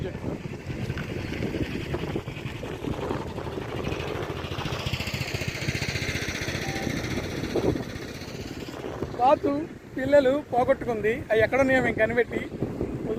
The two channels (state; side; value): identical; both; correlation 1.00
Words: చెట్టు. బాతు పిల్లలు పోగొట్టుకుంది. అవి ఎక్కడున్నాయో మేము కనిపెట్టి